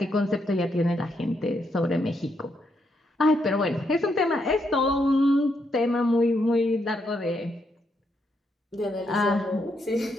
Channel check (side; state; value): both; normal; correlation 0.78